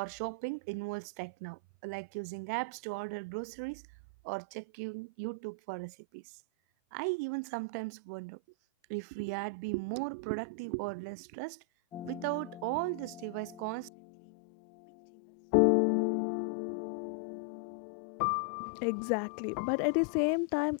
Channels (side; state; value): right; drops out; at 13.9 s